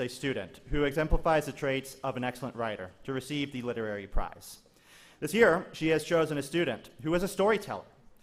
student who exemplifies the traits of an excellent writer to receive the literary prize. This year, she has chosen a student who is a storyteller.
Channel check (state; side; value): identical; both; correlation 1.00